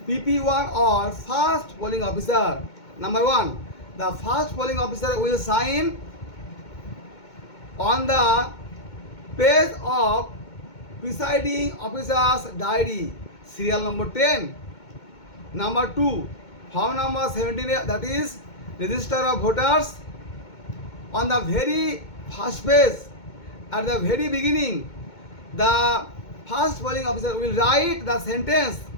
PP1 or first polling officer. Number 1, the first polling officer will sign on the page of presiding officer's diary, serial number 10. Number 2, form number 17, that is register of voters. On the very first page, at the very beginning, the first polling officer will write the sentence,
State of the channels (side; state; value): right; late; 2.2 ms